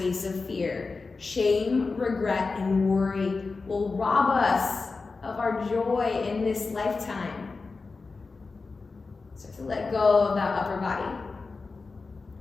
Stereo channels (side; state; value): right; quieter; 4.1 dB